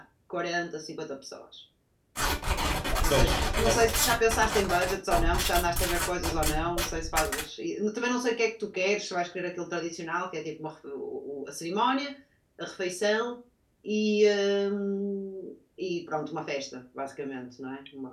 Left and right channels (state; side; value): identical; both; correlation 1.00